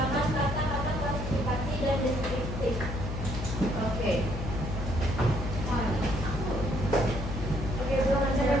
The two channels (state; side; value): noise; left; hum, 5 dB below the sound